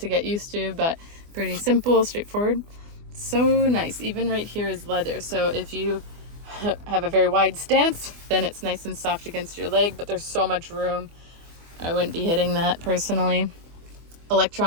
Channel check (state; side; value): late; left; 24 ms